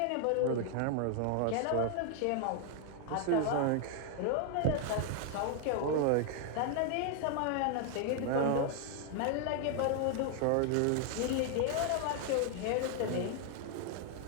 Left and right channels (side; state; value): both; different; correlation 0.00